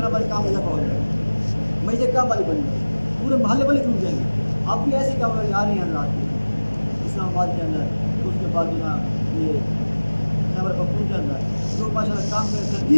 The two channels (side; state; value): both; inverted; correlation -1.00